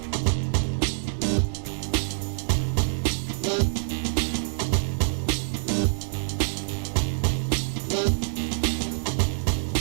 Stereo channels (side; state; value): left; silent; digital silence